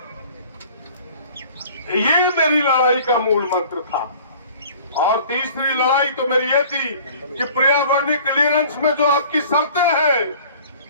ये मेरी लड़ाई का मूल मंत्र था। और तीसरी लड़ाई तो मेरी ये थी कि पर्यावरणीय क्लियरेंस में जो आपकी शर्तें हैं,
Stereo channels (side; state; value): both; inverted; correlation -0.48